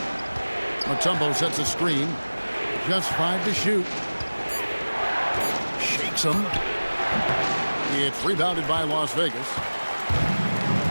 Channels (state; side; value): inverted; both; correlation -1.00